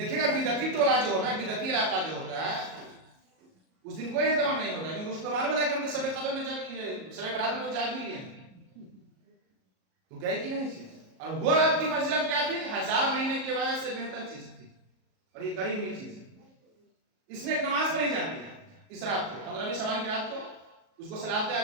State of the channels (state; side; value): late; left; 38 ms